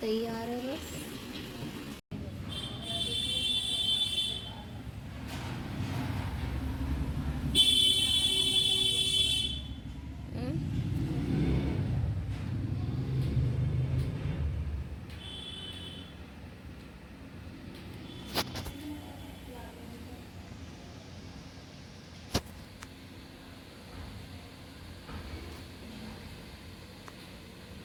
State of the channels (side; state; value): both; identical; correlation 1.00